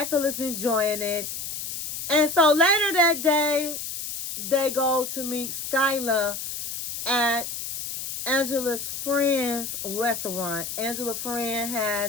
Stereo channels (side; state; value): left; noise; hiss, 6 dB below the sound